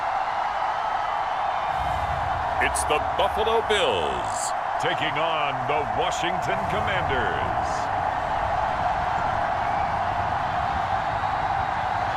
It's the Buffalo Bills taking on the Washington Commanders.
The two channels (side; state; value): both; identical; correlation 1.00